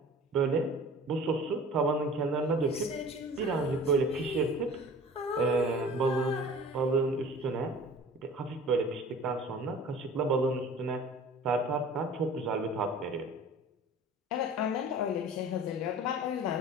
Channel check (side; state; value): both; normal; correlation 0.43